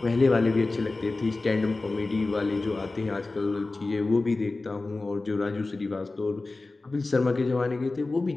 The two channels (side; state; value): right; quieter; 3.3 dB